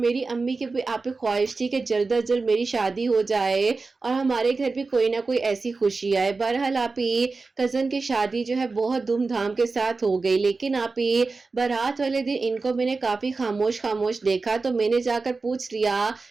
अम्मी की भी आप ही ख्वाहिश थी कि जल्द अज जल्द मेरी शादी हो जाए और हमारे घर भी कोई ना कोई ऐसी खुशी आए। बहरहाल आप ही कज़न की शादी जो है बहुत धूमधाम के साथ हो गई, लेकिन आप ही बारात वाले दिन इनको मैंने काफ़ी खामोश खामोश देखा, तो मैंने जाकर पूछ लिया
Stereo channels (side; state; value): left; quieter; 4.0 dB